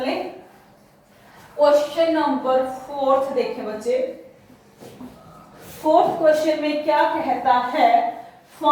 लें। क्वेश्चन नंबर 4 देखें बच्चे। 4th क्वेश्चन में क्या कहता है?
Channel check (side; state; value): both; identical; correlation 1.00